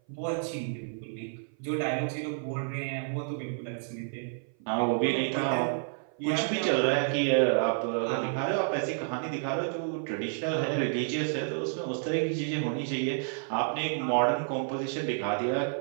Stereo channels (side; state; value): left; silent; 55 dB below the other